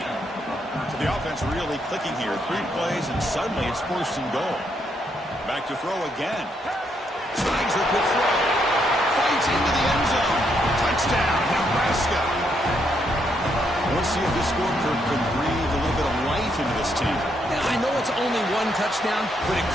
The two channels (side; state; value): both; normal; correlation 0.76